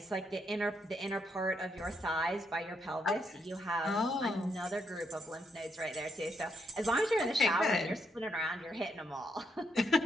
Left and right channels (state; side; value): normal; both; correlation 0.78